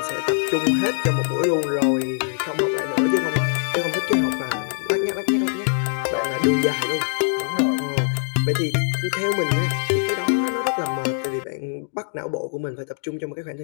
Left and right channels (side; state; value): right; silent; digital silence